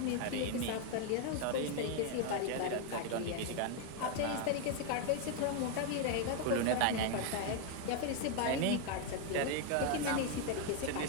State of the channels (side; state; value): both; different; correlation 0.01